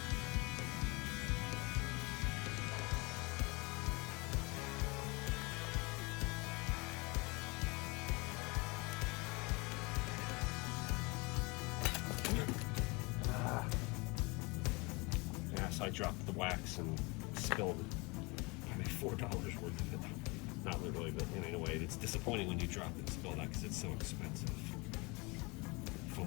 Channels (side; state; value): right; quieter; 27.0 dB